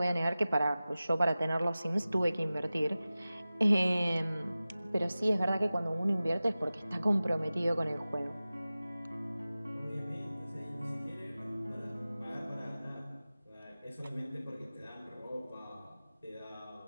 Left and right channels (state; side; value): inverted; both; correlation -0.96